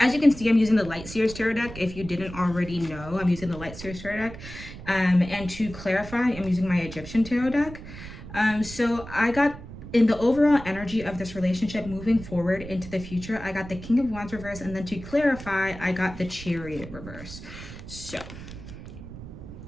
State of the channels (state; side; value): noise; right; rumble, 13 dB below the sound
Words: you can see, I'm using the Light Seers Tarot deck. If you didn't already know, I'm using the Light Seers Tarot deck. And to clarify, I'm using my Egyptian Tarot deck. So I got, in the overall energy of this relationship moving forward into the future, I got the King of Wands reverse. And then to clarify, I got the Chariot reverse. So